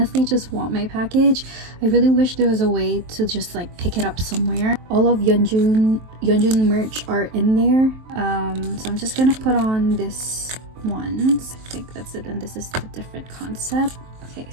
just want my package. I really wish there was a way to just like pick it up somewhere. All of Yeonjun merch are in there. So I'm just gonna put on this ones. I think that's it, and this is a different concept. Okay,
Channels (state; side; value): late; left; 23 ms